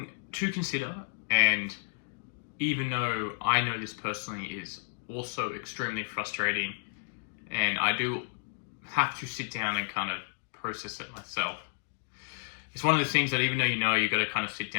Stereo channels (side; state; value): right; silent; digital silence